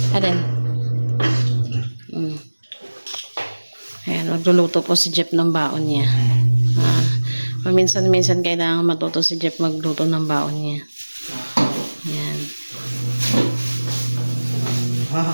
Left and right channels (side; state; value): both; inverted; correlation -1.00